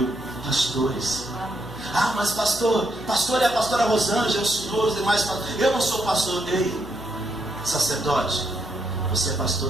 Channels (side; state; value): left; noise; hum, 17 dB below the sound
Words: pastores. Ah, mas pastor é a pastora Rosângela, o senhor, os demais pastores. Eu não sou pastor. Ei, sacerdote, você é pastor